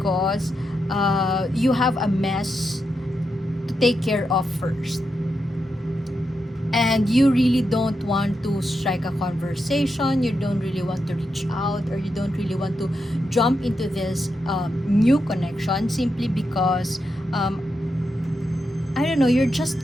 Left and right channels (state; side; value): normal; both; correlation 0.85